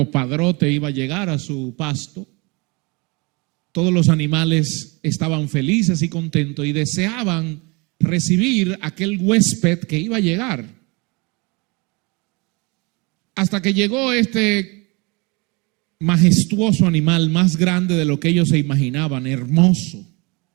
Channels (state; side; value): quieter; left; 28.1 dB